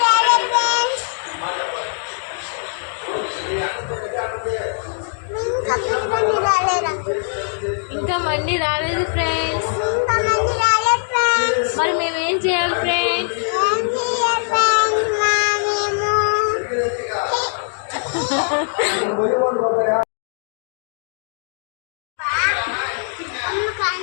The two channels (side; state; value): right; silent; digital silence